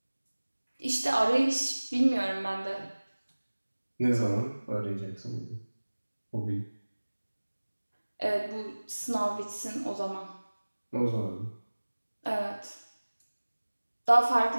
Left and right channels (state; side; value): inverted; both; correlation -1.00